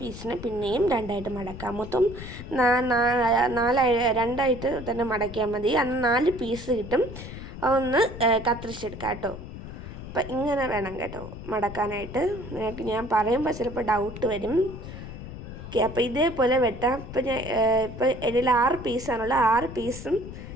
പീസിന് പിന്നെയും രണ്ടായിട്ട് മടക്കുക. മൊത്തം രണ്ടായിട്ട് തന്നെ മടക്കിയാൽ മതി. അന്ന് 4 പീസ് കിട്ടും. അതൊന്ന് കത്തിരിച്ചെടുക്കാം കേട്ടോ. അപ്പം ഇങ്ങനെ വേണം കേട്ടോ മടക്കാനായിട്ട്. നിങ്ങൾക്ക് ഞാൻ പറയുമ്പോൾ ചിലപ്പോൾ ഡൗട്ട് വരും. ഓക്കെ, അപ്പോൾ ഇതേപോലെ വെട്ടാം. ഇപ്പോൾ ഇതിൽ 6 പീസാണുള്ളത്. 6 പീസും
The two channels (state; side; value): noise; left; rumble, 11 dB below the sound